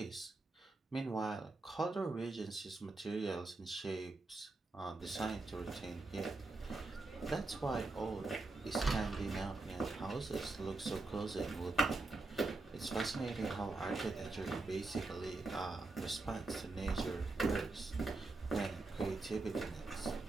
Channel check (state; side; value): quieter; left; 3.2 dB